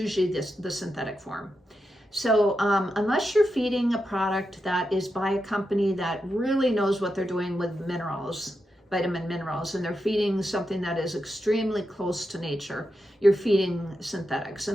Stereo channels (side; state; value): both; normal; correlation 0.87